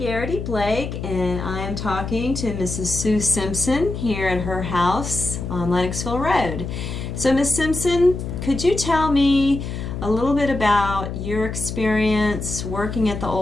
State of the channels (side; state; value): left; noise; hum, 6 dB below the sound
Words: and I am talking to Mrs. Sue Simpson here at her house on Lennoxville Road. So, Miss Simpson, could you tell me a little bit about your experience working at the